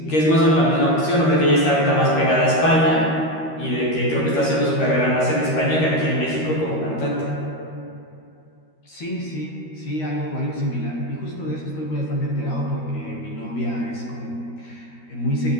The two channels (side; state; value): right; late; 13 ms